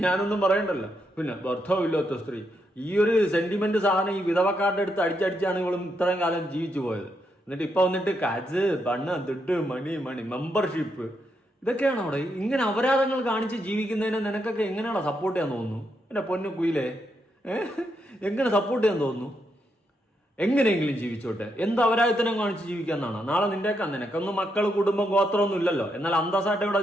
ഞാനൊന്നും പറയണ്ടല്ലോ. പിന്നെ ഭർത്താവില്ലാത്ത സ്ത്രീ, ഈ ഒരു സെന്റിമെന്റ് സാധനം ഈ വിധവക്കാരുടെ അടുത്ത് അടിച്ചടിച്ചാണ് ഇവളും ഇത്രയും കാലം ജീവിച്ചു പോയത്. എന്നിട്ട് ഇപ്പൊ വന്നിട്ട് കാജ് ബണ്ണ ദുഡ് മണി മെമ്പർഷിപ്പ് ഇതൊക്കെയാണ് അവിടെ. ഇങ്ങനെ അപരാധങ്ങൾ കാണിച്ച് ജീവിക്കുന്നതിന് നിനക്കൊക്കെ എങ്ങനെയാണ് സപ്പോർട്ട് ചെയ്യാൻ തോന്നുന്നു? എന്റെ പൊന്നു കുയിലേ, എങ്ങനെ സപ്പോർട്ട് ചെയ്യാൻ തോന്നുന്നു? എങ്ങനെയെങ്കിലും ജീവിച്ചോട്ടെ. എന്ത് അപരാധത്തിനും കാണിച്ച് ജീവിക്കാന്നാണ്? നാളെ നിനക്കൊന്നും മക്കൾ, കുടുംബം, ഗോത്രമൊന്നും ഇല്ലല്ലോ. എന്നാൽ അന്തസ്സായിട്ട് ഇവിടെ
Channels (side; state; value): both; normal; correlation 0.80